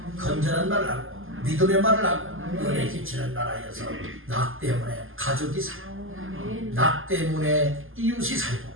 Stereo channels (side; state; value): left; late; 0.59 ms